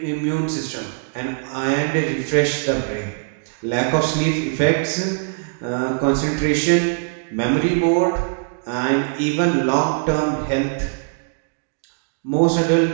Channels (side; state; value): left; silent; digital silence